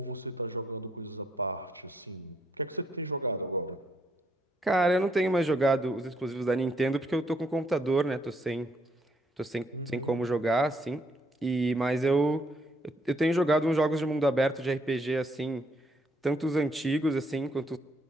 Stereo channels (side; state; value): both; normal; correlation 0.72